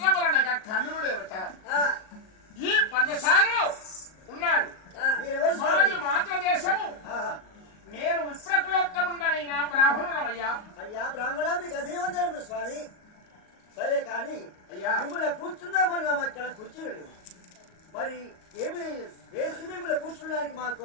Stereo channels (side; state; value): right; late; 38 ms